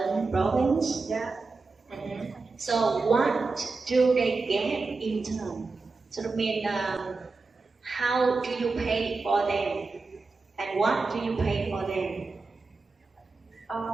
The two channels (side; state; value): left; quieter; 4.0 dB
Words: province? Yeah. Mm-hmm. So what do they get in turn? So I mean, how do you pay for them, and what do you pay for them?